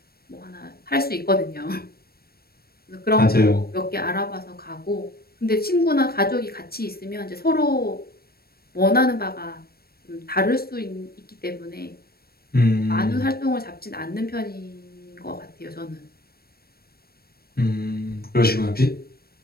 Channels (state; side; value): late; right; 0.44 ms